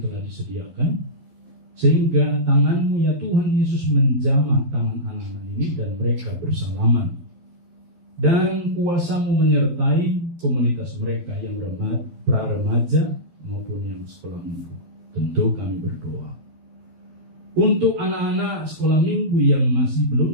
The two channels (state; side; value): late; left; 11 ms